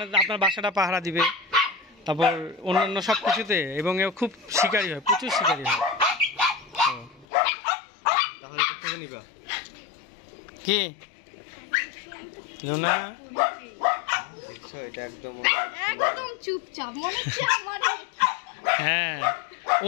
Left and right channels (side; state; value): right; drops out; at 7.2 s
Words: আপনার বাসাটা পাহারা দিবে, তারপর অন্যান্য সব কিছুতে, এবং এ খুব শিকারী হয়, প্রচুর শিকারী হয়। কি লুনা একদম চুপচাপ মনে হচ্ছে আমার। হ্যাঁ,